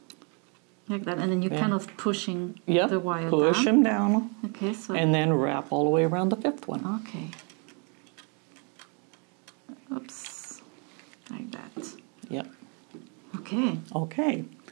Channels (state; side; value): quieter; left; 36.4 dB